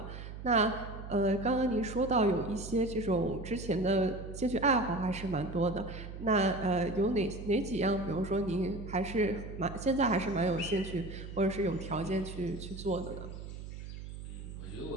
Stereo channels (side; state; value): right; noise; hum, 10 dB below the sound